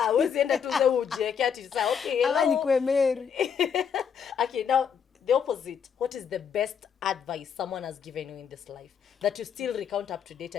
wezi enda tu za ujeke ati sasa okay. Ala nikwe Mary. Okay, now the opposite. What is the best advice someone has given you in this life that you still recount up to date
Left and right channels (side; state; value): right; quieter; 7.3 dB